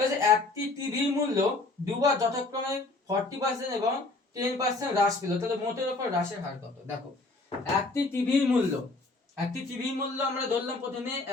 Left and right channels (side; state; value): right; quieter; 3.3 dB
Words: একটি টিভির মূল্য দুবার যথাক্রমে 40% এবং 10% হ্রাস পেল, তাহলে মোটের উপর হ্রাসের হার কত। দেখো একটি টিভির মূল্য, একটি টিভির মূল্য আমরা ধরলাম প্রথমে